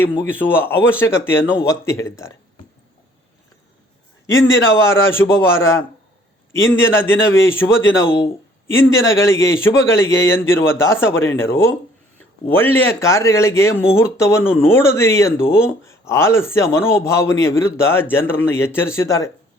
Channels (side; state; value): both; normal; correlation 0.58